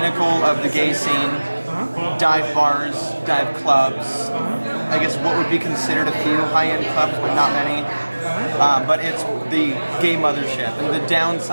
of the gay scene. Dive bars, dive clubs. I guess what would be considered a few high-end clubs, but not many. But it's the gay mothership. And the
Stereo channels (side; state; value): both; inverted; correlation -1.00